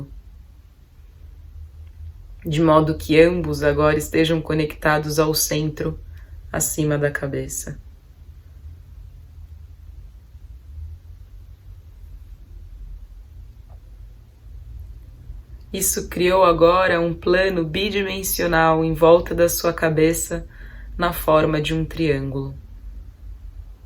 De modo que ambos agora estejam conectados ao centro acima da cabeça. Isso criou agora um plano bidimensional em volta da sua cabeça na forma de um triângulo.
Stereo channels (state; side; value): identical; both; correlation 1.00